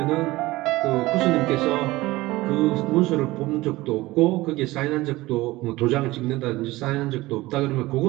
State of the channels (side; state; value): left; quieter; 19.2 dB